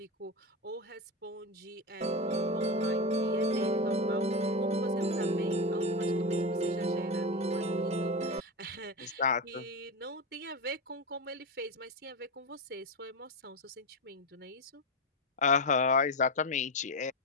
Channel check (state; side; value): normal; both; correlation 0.16